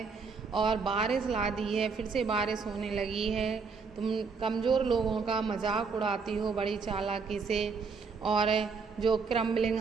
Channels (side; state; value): left; quieter; 5.0 dB